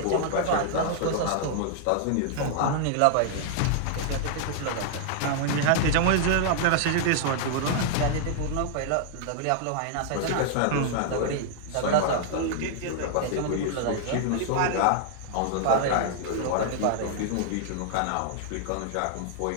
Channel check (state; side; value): different; both; correlation -0.01